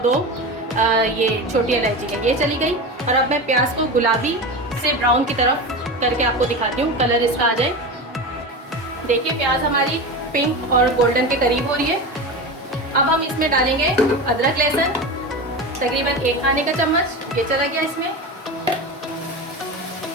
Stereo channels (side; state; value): both; normal; correlation 0.25